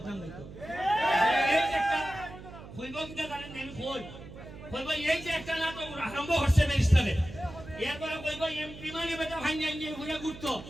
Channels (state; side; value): noise; right; hum, 15 dB below the sound